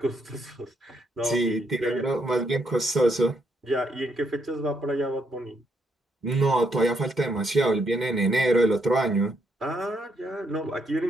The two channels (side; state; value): both; normal; correlation 0.75